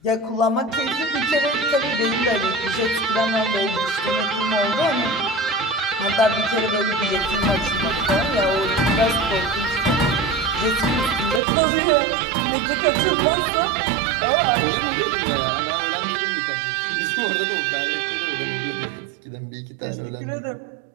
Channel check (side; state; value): left; drops out; at 11.4 s